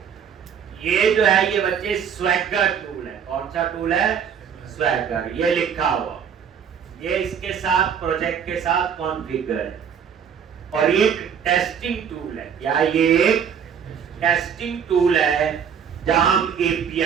ये जो है ये बच्चे स्वैगर टूल है, कौन सा टूल है, स्वैगर, ये लिखा हुआ, ये इसके साथ प्रोजेक्ट के साथ कॉन्फ़िगर है। और ये एक टेस्टिंग टूल है, क्या ये एक टेस्टिंग टूल है जहां हम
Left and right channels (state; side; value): quieter; left; 7.6 dB